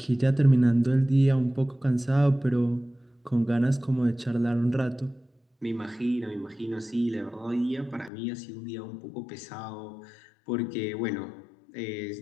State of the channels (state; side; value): drops out; right; at 8.1 s